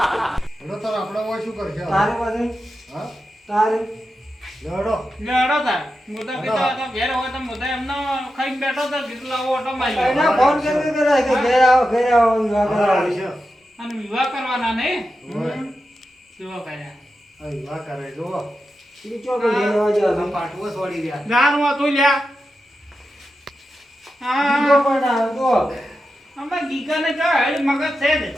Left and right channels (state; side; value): normal; both; correlation 0.90